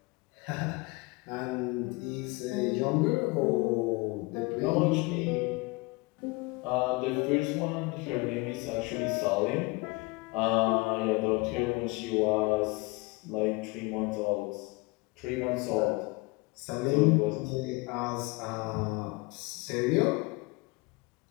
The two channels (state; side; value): quieter; right; 25.6 dB